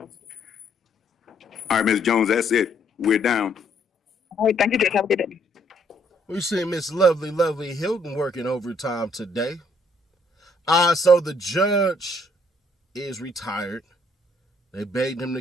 All right, Ms. Jones, that's it. We're down. All right, thank you, Judge. Have a good day. We see Miss Lovely Hilton working overtime today. So the judge is retired. They begged him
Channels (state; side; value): normal; both; correlation 0.67